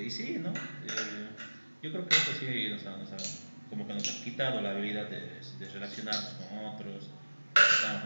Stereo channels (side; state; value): both; inverted; correlation -1.00